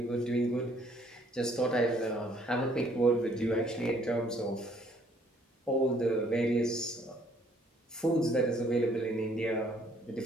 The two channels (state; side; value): normal; both; correlation 0.63